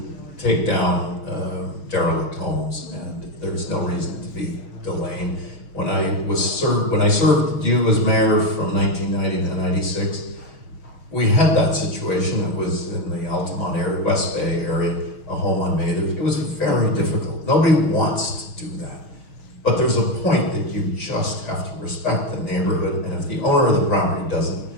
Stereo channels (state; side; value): late; right; 6.4 ms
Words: take down derelict homes, and there's no reason to be delaying. When I served you as mayor from 1990 to 96, we had that situation. It was in the Altamont area, West Bay area, a home on Mather. It was very difficult. Nobody wants to do that. But there's a point that you just have to respect the neighborhood, and if the owner of the property doesn't,